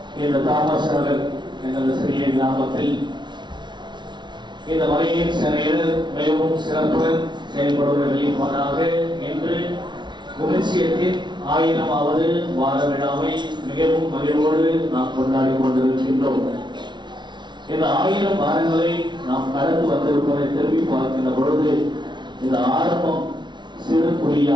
இந்த தாமசர்கள் எங்களது சிறிய கிராமத்தில் இந்த மலையின் சிறையில் மிகவும் சிறப்புடன் செயல்படுவர்களின் மகனாக இன்று குமிசியத்தின் 1000வது வார விழாவை மிகவும் மகிழ்வோடு நாம் கொண்டாடி கொண்டிருக்கின்றோம். இந்த 1000 வாரங்களை நாம் கடந்து வந்திருப்பதை திரும்பி பார்க்கின்ற பொழுது இந்த ஆரம்பம் சிறு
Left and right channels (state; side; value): late; left; 0.22 ms